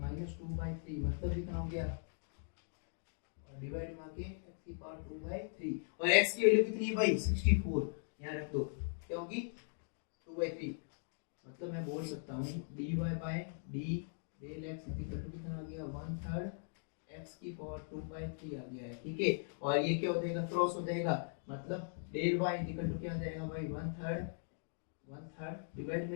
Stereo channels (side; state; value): right; silent; digital silence